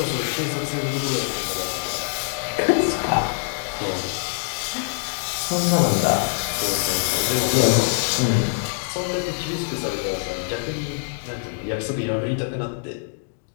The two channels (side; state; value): right; silent; digital silence